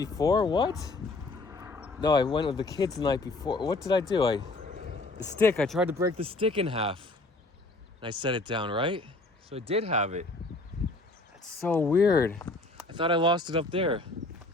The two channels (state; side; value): quieter; right; 3.1 dB